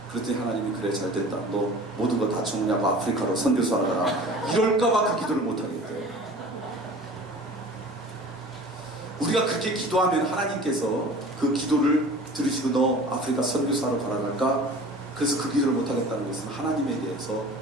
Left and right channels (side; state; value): both; normal; correlation 0.42